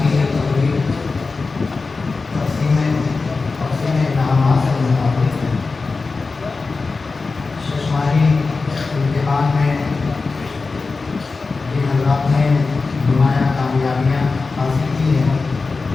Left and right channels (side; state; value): right; quieter; 4.1 dB